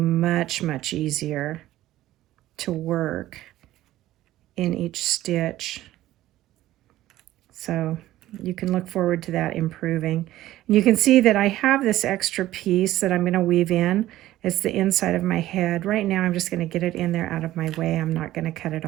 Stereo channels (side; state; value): left; quieter; 14.9 dB